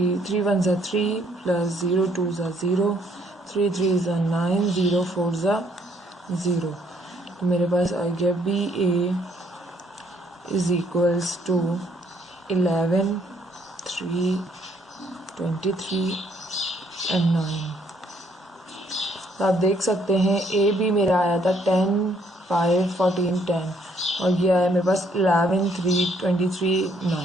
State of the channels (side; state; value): both; normal; correlation 0.67